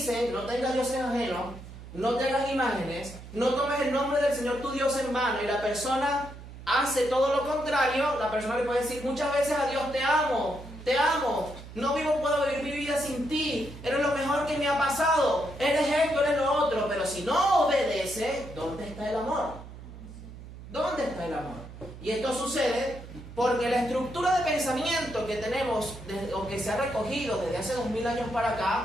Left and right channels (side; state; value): right; noise; hum, 14 dB below the sound